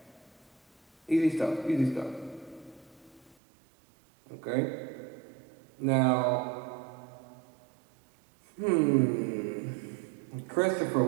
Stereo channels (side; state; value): left; drops out; at 3.4 s